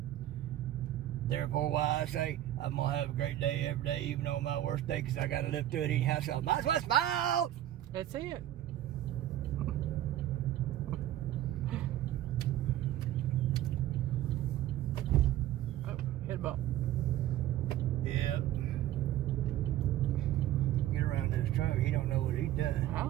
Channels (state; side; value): quieter; left; 13.0 dB